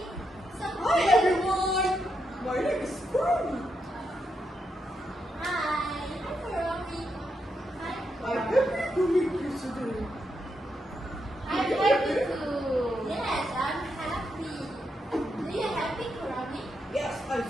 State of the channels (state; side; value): normal; both; correlation 0.82